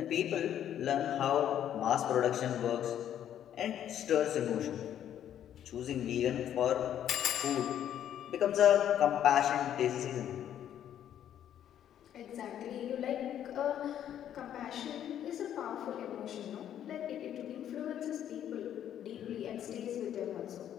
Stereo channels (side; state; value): right; quieter; 10.4 dB